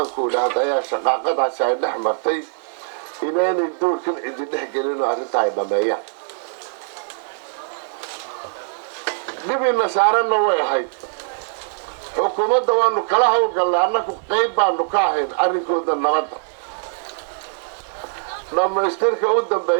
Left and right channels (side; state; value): left; silent; digital silence